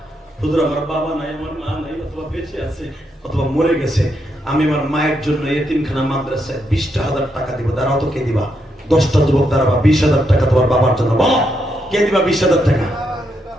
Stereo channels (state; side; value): normal; both; correlation 0.80